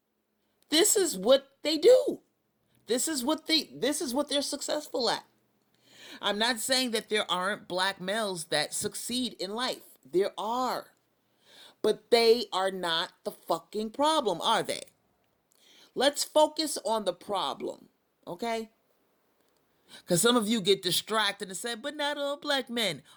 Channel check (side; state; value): both; identical; correlation 1.00